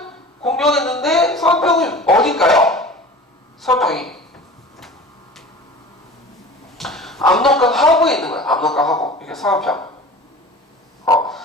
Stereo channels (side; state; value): both; normal; correlation 0.39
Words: 공격했는데 서안평이 어딜까요? 서안평이 압록강 하구에 있는 거예요. 압록강 하구. 이게 서안평.